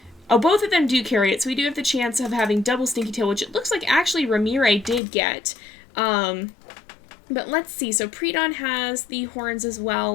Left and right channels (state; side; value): drops out; right; at 5.0 s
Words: Oh, both of them do carry it, so we do have the chance of having double stinky tail, which it looks like actually Ramire did get. But let's see, so Pre-Dawn has the horns as